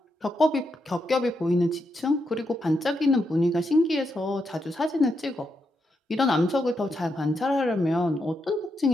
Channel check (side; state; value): both; normal; correlation 0.82